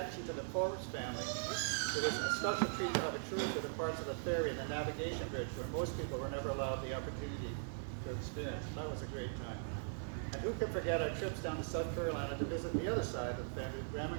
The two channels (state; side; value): silent; left; digital silence